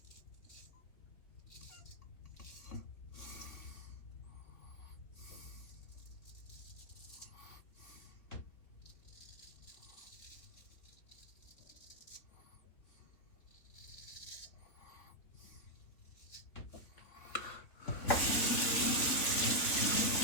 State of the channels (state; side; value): late; right; 3.2 ms